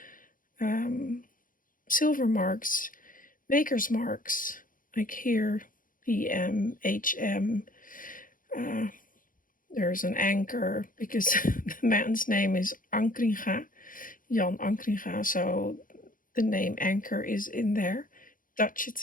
silver marks, maker's marks, like here, PM, HM. There's an anchor, because the man's name is Ankringa, Jan Ankringa, so the name anchor is in there. Dutch, it's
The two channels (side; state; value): right; late; 0.40 ms